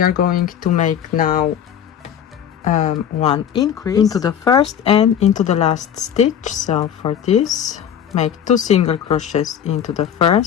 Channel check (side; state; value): right; quieter; 9.0 dB